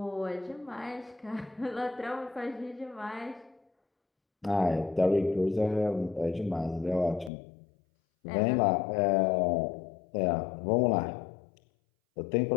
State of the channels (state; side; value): drops out; right; at 7.3 s